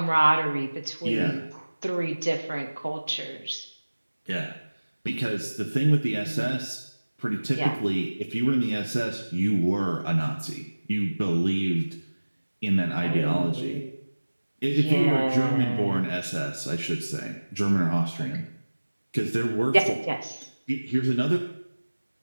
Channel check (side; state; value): both; inverted; correlation -1.00